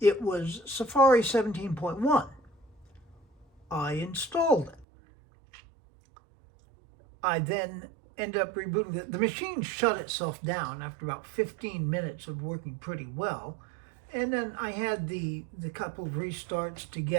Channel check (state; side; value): drops out; left; at 4.9 s